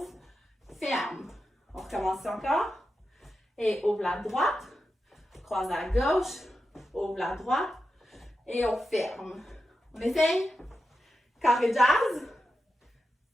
ferme. On recommence encore. Et ouvre la droite, croise à gauche, ouvre la droite et on ferme. On essaye. Carré jazz.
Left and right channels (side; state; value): both; normal; correlation 0.90